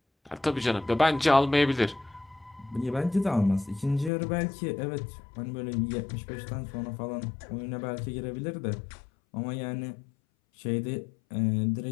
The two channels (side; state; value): right; drops out; at 4.1 s